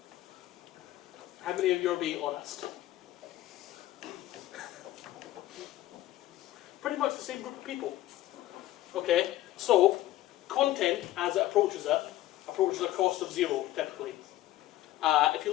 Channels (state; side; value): quieter; right; 14.9 dB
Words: How many of you are being honest? Pretty much the same group of people. Okay, so content as it approaches a cost of 0 typically. If you